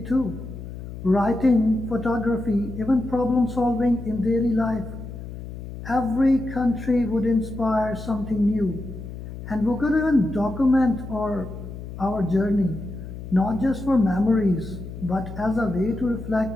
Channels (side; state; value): left; noise; hum, 11 dB below the sound